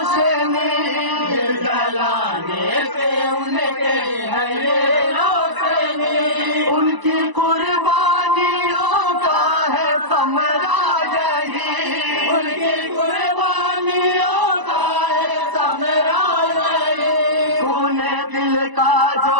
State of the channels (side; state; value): left; late; 1.0 ms